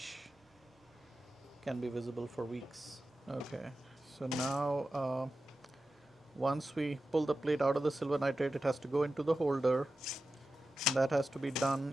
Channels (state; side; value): normal; both; correlation 0.93